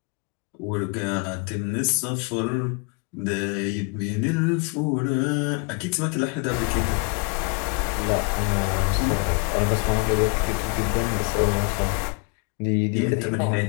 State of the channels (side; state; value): right; quieter; 34.0 dB